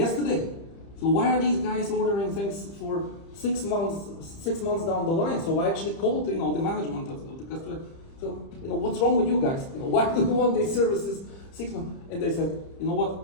So why are these guys ordering things for 6 months down the line? So I actually called, the management of the customer. So, what's wrong with you guys? Why do you want these services 6 months? And they said,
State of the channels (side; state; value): right; late; 30 ms